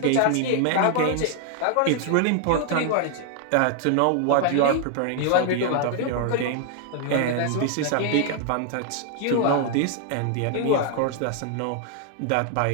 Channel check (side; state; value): both; different; correlation 0.00